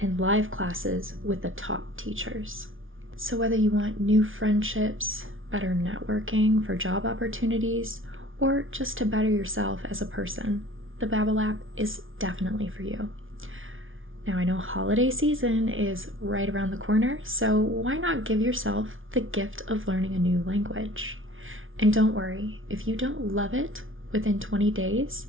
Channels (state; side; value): late; left; 0.58 ms